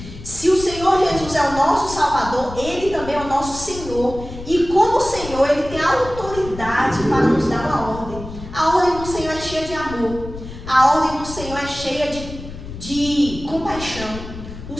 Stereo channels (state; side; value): noise; left; rumble, 12 dB below the sound